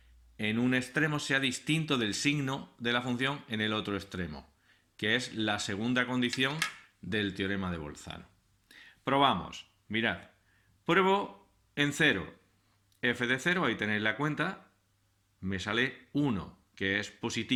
en un extremo sea distinto del signo de la función en el otro extremo, que es la segunda condición del teorema de Bolzano. Probamos. Mirad. Pruebo en 0. F de 0, ahí tenéis la cuenta, me sale 1, que es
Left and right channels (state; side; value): identical; both; correlation 1.00